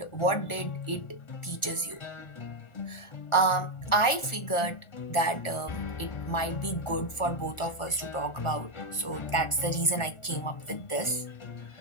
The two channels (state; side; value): late; right; 1.4 ms